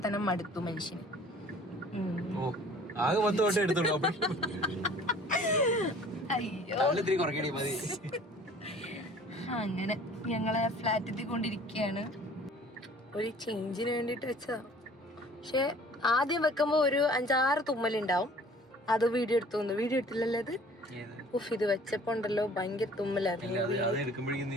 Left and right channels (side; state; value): both; normal; correlation 0.51